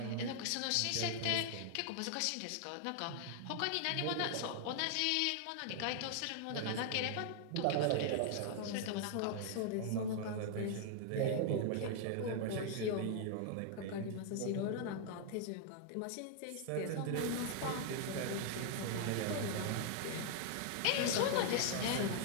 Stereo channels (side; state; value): both; different; correlation 0.00